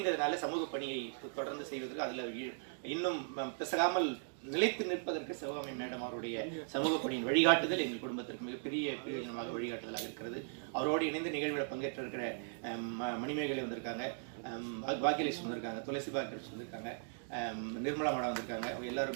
சமூக பணியை தொடர்ந்து செய்வதற்கு அதுல இன்னும் பிசகாமல் நிலைத்து நிற்பதற்கு சிவகாமி மேடம் அவருடைய சமூக பணியின் வழிகாட்டுதல் எங்கள் குடும்பத்திற்கு மிகப்பெரிய பிரயோஜனமாக வழிகாட்டுதலாக இருக்கிறது. அவரோடு இணைந்து நிகழ்வில் பங்கேற்ற இருக்கிற மணிமேகலை வந்திருக்காங்க, பாக்கியலட்சுமி வந்திருக்காங்க, துளசி பாக்கியலட்சுமி வந்திருக்காங்க, நிர்மலா மேடம் வந்திருக்காங்க.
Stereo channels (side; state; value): left; silent; digital silence